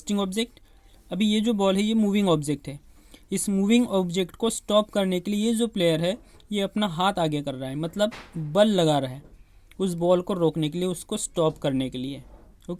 ऑब्जेक्ट। अभी ये जो बॉल है, ये मूविंग ऑब्जेक्ट है। इस मूविंग ऑब्जेक्ट को स्टॉप करने के लिए ये जो प्लेयर है, ये अपना हाथ आगे कर रहा है, मतलब बल लगा रहा है उस बॉल को रोकने के लिए, उसको स्टॉप करने के लिए।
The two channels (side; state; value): both; identical; correlation 1.00